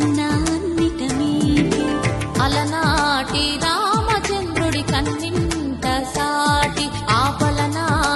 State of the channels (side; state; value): both; identical; correlation 1.00